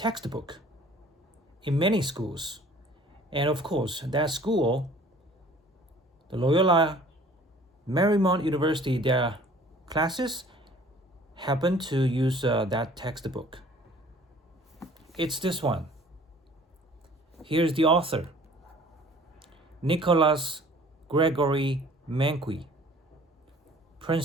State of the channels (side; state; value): both; normal; correlation 0.52